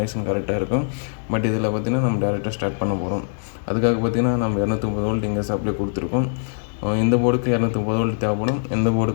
கரெக்டாக இருக்கும். பட் இதில் பார்த்திங்கன்னா நம்ம டேரெக்டாக ஸ்டார்ட் பண்ண போகிறோம். அதுக்காக பார்த்திங்கன்னா நம்ம 230 வோல்ட் இங்கே சப்ளை கொடுத்துருக்கோம். இந்த போர்டுக்கு 230 வோல்ட் தேவைப்படும், இந்த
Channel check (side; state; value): right; silent; digital silence